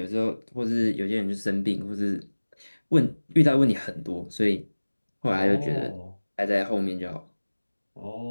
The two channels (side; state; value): both; inverted; correlation -1.00